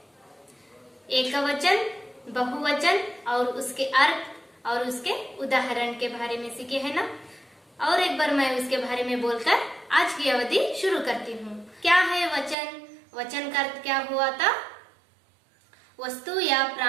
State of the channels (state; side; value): drops out; left; at 12.6 s